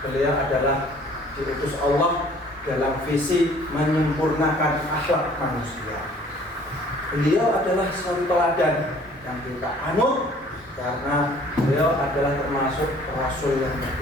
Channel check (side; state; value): both; normal; correlation 0.55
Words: beliau adalah diutus Allah dalam visi menyempurnakan akhlak manusia. Beliau adalah satu teladan yang kita anut karena beliau adalah termasuk rasul yang